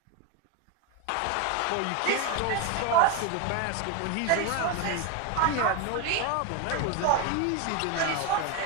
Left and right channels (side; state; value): both; different; correlation 0.02